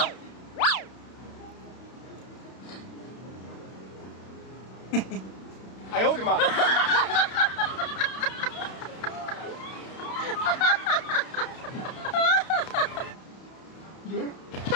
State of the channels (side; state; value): right; late; 32 ms